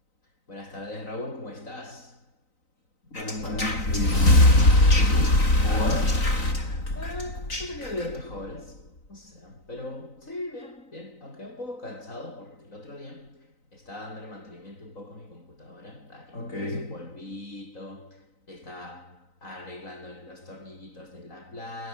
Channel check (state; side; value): late; right; 3.9 ms